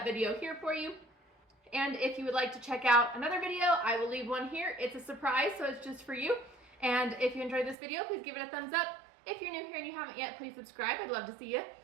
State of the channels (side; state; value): left; drops out; at 7.8 s